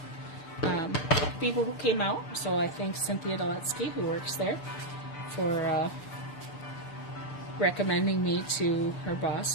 people who came out. So I thank Cynthia Doletsky, who works there, for recommending me to her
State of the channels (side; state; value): right; late; 6.8 ms